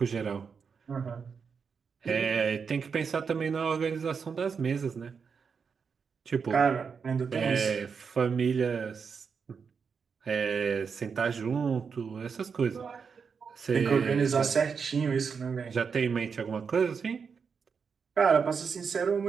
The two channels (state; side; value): quieter; left; 5.9 dB